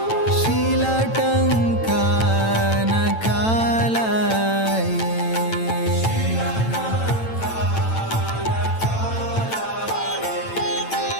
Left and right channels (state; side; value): late; right; 9.0 ms